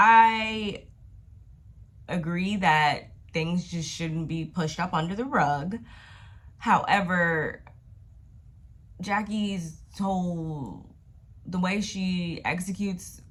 agree that things just shouldn't be pushed up under the rug. However, Jackie's the way she executes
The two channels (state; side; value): identical; both; correlation 1.00